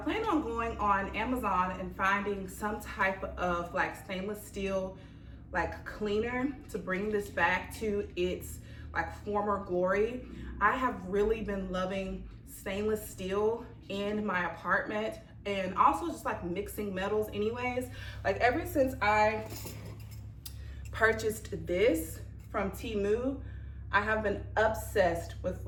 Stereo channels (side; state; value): both; identical; correlation 1.00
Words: on going on Amazon and finding some type of like stainless steel like cleaner to bring this back to its like former glory. I have really been loving stainless steel in my apartment, and also just like mixing metals anyways. Like ever since I purchased this from Temu, I have been obsessed with